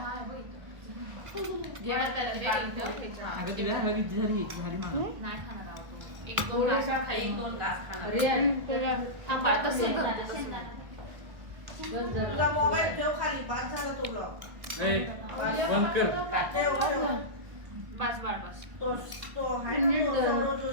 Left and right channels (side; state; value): left; late; 1.3 ms